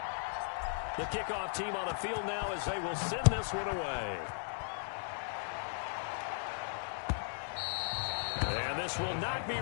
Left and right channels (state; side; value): silent; right; digital silence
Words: The kickoff team on the field now as they will send this one away. And this will not be